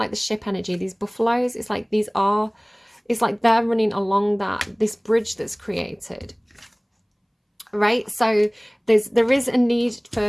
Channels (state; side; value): identical; both; correlation 1.00